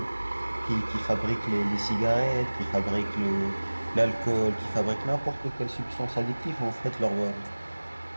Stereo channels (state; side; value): inverted; both; correlation -1.00